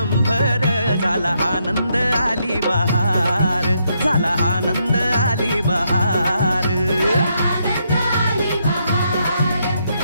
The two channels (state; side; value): inverted; both; correlation -0.77